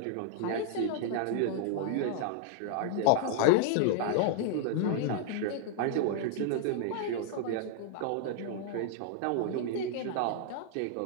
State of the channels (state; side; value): different; both; correlation -0.01